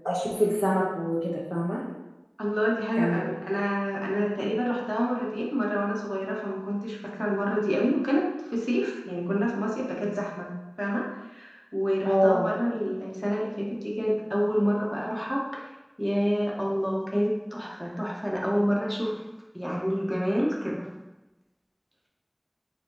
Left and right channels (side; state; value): both; identical; correlation 1.00